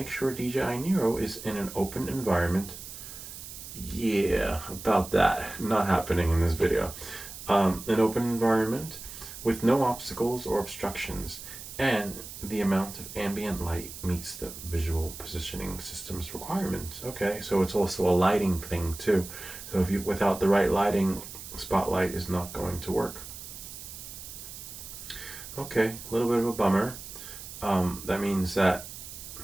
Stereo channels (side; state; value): right; noise; hiss, 12 dB below the sound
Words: sure DJI NEO is in an open environment. Yeah, about that. Not happening in this video. An open environment with no obstacles or obstructions, and the amount of ambient light meets the visual positioning system's requirements. Okay, so it's also a lighting thing too. So if you, without the right lighting, spotlight is not going to work. Okay, a little bit of a bummer. That means that,